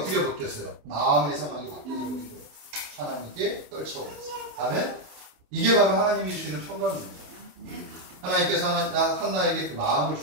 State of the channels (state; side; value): late; left; 27 ms